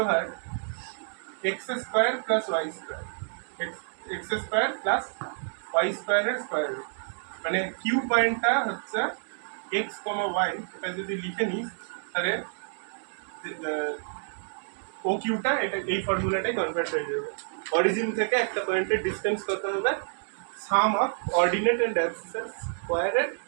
over x square plus y square, x square plus y স্কোয়ারের স্কোয়ার রুট। মানে কিউ পয়েন্টটা হচ্ছে এক্স, ওয়াই, এটা যদি লিখে নিস তাহলে ও কিউটা এটা এই ফর্মুলাটাই কনভার্ট হয়ে যাবে। অরিজিন থেকে একটা পয়েন্টের ডিসটেন্স কত হবে? সাম অফ অর্ডিনেট এন্ড অ্যাবসিসার স্কোয়ারের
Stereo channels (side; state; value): left; silent; digital silence